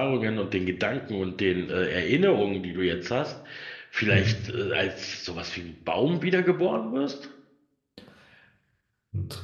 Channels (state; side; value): identical; both; correlation 1.00